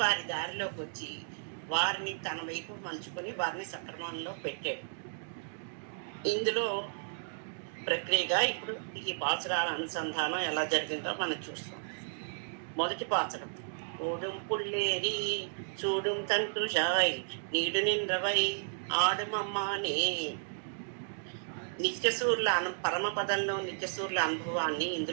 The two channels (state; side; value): silent; left; digital silence